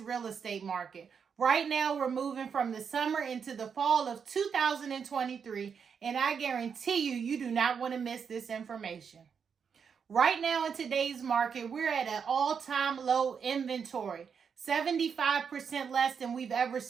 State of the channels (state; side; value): quieter; left; 6.6 dB